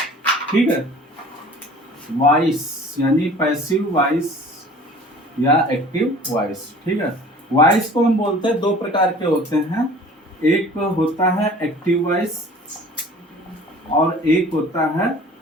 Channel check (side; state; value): both; normal; correlation 0.46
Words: ठीक है, वॉइस यानी पैसिव वॉइस या एक्टिव वॉइस। ठीक है, वॉइस को हम बोलते हैं दो प्रकार के होते हैं, एक होता है एक्टिव वॉइस और एक होता है